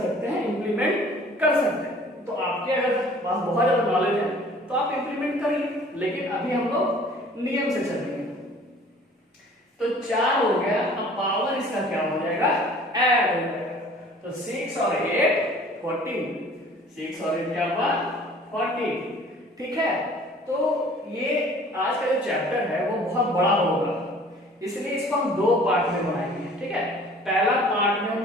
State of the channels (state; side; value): normal; both; correlation 0.50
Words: हैं, इंप्लीमेंट कर सकते हैं। तो आपके अगर पास बहुत ज्यादा नॉलेज है तो आप इंप्लीमेंट करिए, लेकिन अभी हम लोग नियम से चलेंगे। तो 4 हो गया, अब पावर इसका क्या हो जाएगा, ऐड हो जाएगा। तो 6 और 8 14, 6 और 8 क्या हुआ 40, ठीक है। तो ये आज का जो चैप्टर है वो बहुत बड़ा होगा, इसलिए इसको हम 2 पार्ट में बनाएंगे, ठीक है। पहला पार्ट में हम